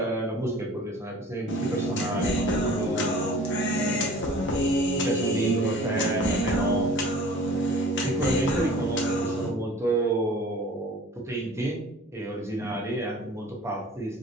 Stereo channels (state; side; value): normal; both; correlation 0.46